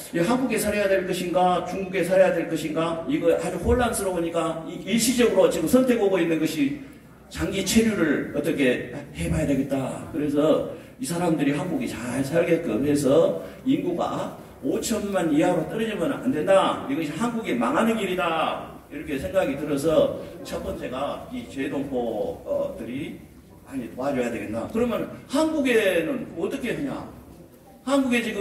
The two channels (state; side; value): identical; both; correlation 1.00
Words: 한국에 살아야 될 것인가, 중국에 살아야 될 것인가, 이거 아주 혼란스러우니까 일시적으로 지금 선택하고 있는 것이 장기 체류를 어떻게 해봐야 되겠다. 그래서 이 사람들이 한국이 잘 살게끔 해서 인구가 5천만 이하로 떨어지면 안 된다. 이것이 한국이 망하는 길이다. 이렇게 생각이 들어서 첫 번째가 이 재동포들이 많이 도와줘야 되겠나. 그러면 한국에는 어떻게 하냐. 한국에